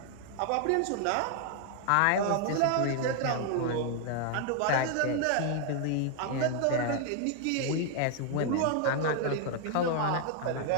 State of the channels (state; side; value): different; both; correlation 0.00